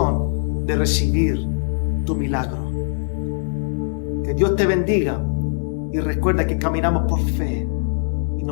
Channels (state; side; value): silent; right; 65 dB below the other